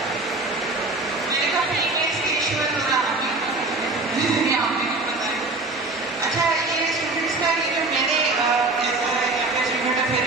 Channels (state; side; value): quieter; left; 3.1 dB